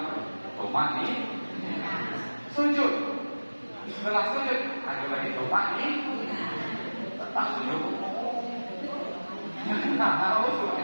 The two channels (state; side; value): inverted; both; correlation -1.00